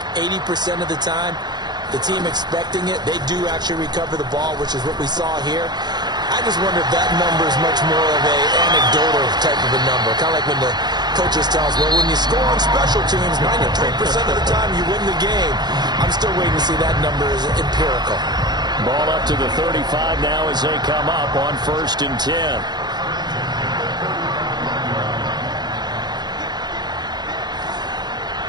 80% of the time, the team expecting it, they do actually recover the ball, which is what we saw here. I just wonder if that number is much more of a anecdotal type of a number. Kind of like when the coaches tell us, well, when you score on special teams, 93% of the time you win the game. I'm still waiting to see that number is empirical. Ball up to the 35 now as they come up on 1st and 10.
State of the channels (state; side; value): late; left; 0.20 ms